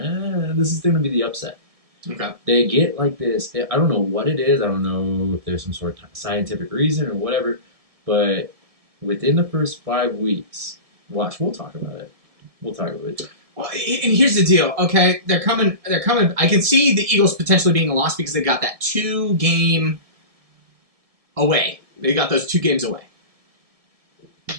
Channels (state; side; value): late; left; 1.7 ms